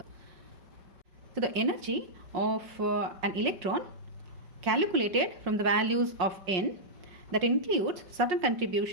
So the energy of an electron calculated from the values of n, that includes certain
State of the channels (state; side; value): late; left; 5.6 ms